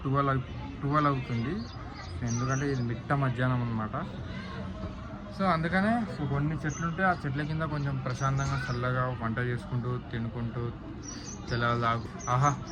12 అవుతుంది. ఎందుకంటే ఇది మిట్ట మధ్యాహ్నం అనమాట. సో అందుకనే కొన్ని చెట్లు ఉంటే ఆ చెట్ల కింద కొంచెం ప్రశాంతంగా చల్లగా వంట చేసుకుంటూ తినుకుంటూ తెల్లవారు ఆహా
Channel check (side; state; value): both; identical; correlation 1.00